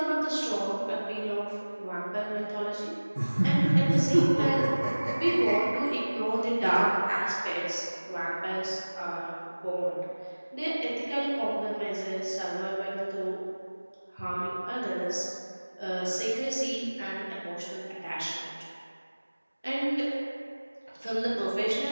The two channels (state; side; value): inverted; both; correlation -1.00